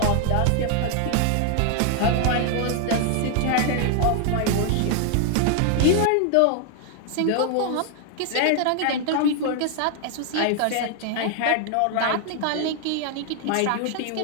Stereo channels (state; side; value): different; both; correlation 0.00